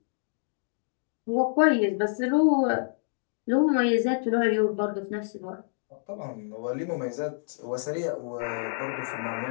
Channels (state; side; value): silent; right; digital silence